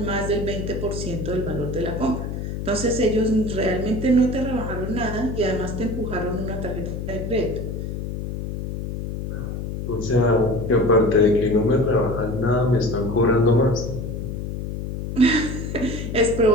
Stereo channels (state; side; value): noise; left; hum, 5 dB below the sound